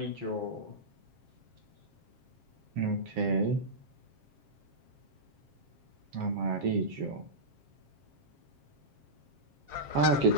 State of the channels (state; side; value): late; left; 7.5 ms